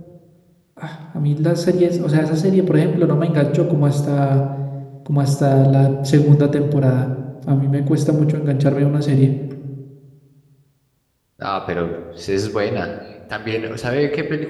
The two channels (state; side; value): identical; both; correlation 1.00